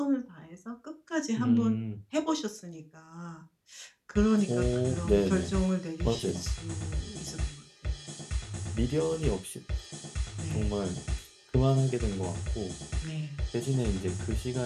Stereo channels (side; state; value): both; identical; correlation 1.00